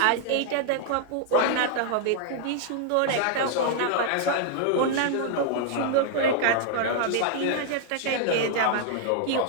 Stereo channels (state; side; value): different; both; correlation -0.01